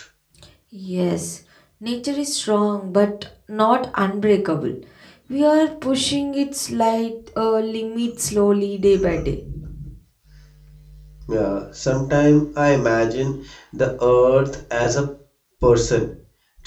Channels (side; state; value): both; identical; correlation 1.00